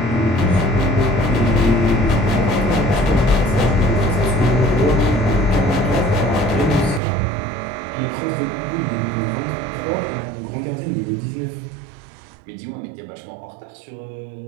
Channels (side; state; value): left; drops out; at 7.0 s